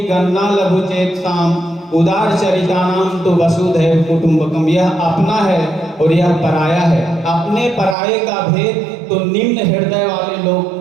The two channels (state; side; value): drops out; left; at 8.0 s